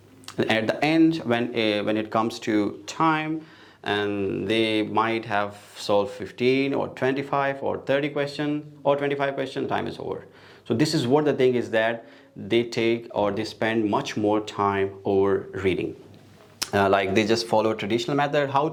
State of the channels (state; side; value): identical; both; correlation 1.00